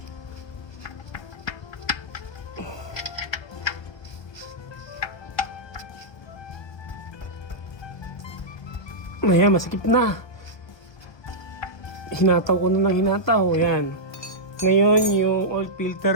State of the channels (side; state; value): right; late; 1.2 ms